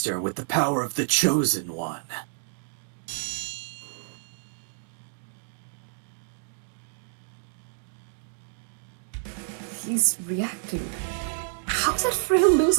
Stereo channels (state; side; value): silent; left; digital silence